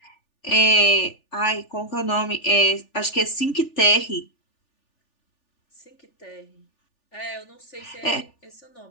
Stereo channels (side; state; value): right; late; 3.4 ms